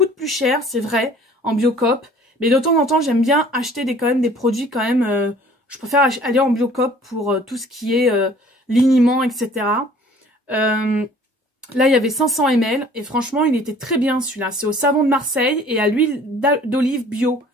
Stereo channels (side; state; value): both; normal; correlation 0.52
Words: plus cher, c'est vrai, en Biocop. Mais de temps en temps, j'aime bien acheter quand même des produits quand même... je préfère aller en Biocop pour tout ce qui est liniment, etc. Là, il y avait 500 ml. Et franchement, il était très bien celui-là. C'est au savon de Marseille et à l'huile d'olive bio.